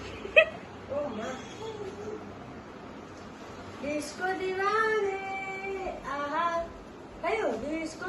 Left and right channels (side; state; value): both; identical; correlation 1.00